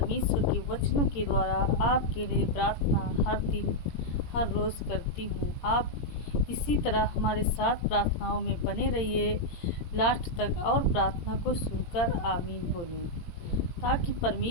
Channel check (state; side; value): late; right; 17 ms